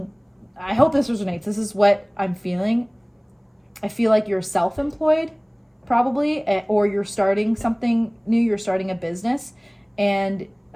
I hope this resonates. This is what I'm feeling. I feel like you're self-employed probably, or you're starting something new. You're starting a business, and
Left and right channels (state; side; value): identical; both; correlation 1.00